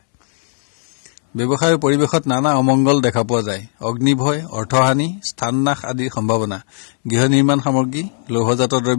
ব্যৱসায়ৰ পৰিৱেশত নানা অমংগল দেখা পোৱা যায়। অগ্নিভয়, অৰ্থহানি, স্থাননাশ আদিৰ সম্ভাৱনা। গৃহ নিৰ্মাণ সামগ্ৰী, লৌহজাত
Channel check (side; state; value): right; silent; digital silence